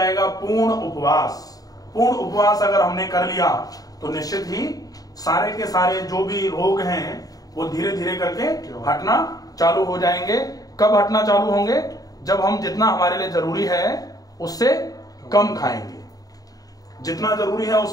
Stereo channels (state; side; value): late; right; 0.18 ms